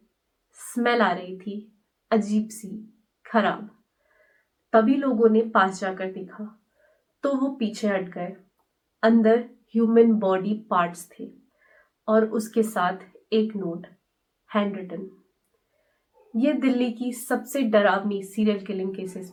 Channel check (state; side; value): identical; both; correlation 1.00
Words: स्मेल आ रही थी, अजीब सी, खराब। तभी लोगों ने पास जाकर देखा तो वो पीछे हट गए। अंदर ह्यूमन बॉडी पार्ट्स थे और उसके साथ एक नोट, हैंड रिटन। ये दिल्ली की सबसे डरावनी सीरियल किलिंग केसेस